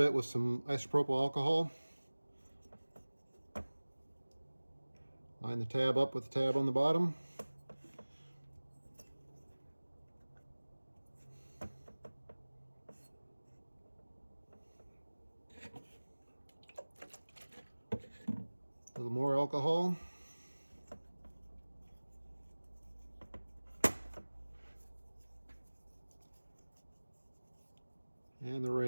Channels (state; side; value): inverted; both; correlation -1.00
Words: with some isopropyl alcohol. Line the tab up with the tab on the bottom. A little more alcohol. And the